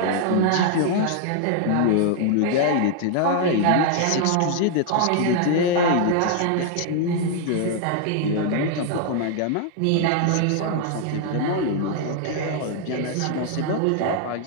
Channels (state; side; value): different; both; correlation 0.00